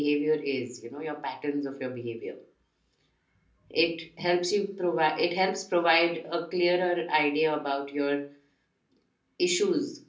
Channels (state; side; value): identical; both; correlation 1.00